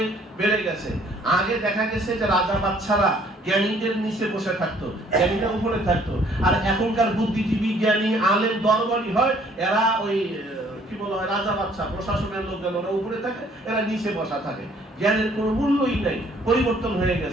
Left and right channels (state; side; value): normal; both; correlation 0.60